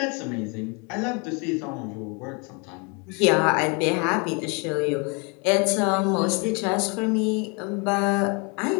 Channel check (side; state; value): right; quieter; 32.7 dB